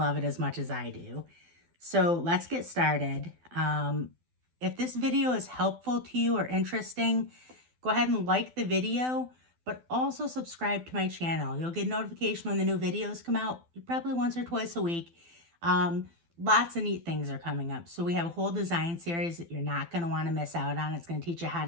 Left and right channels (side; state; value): left; late; 12 ms